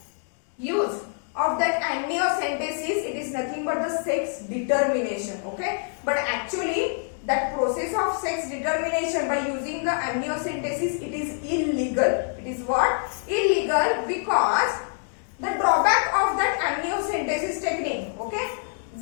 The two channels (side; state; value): right; silent; 61 dB below the other